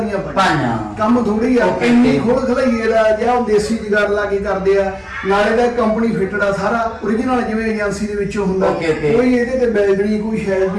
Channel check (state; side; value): identical; both; correlation 1.00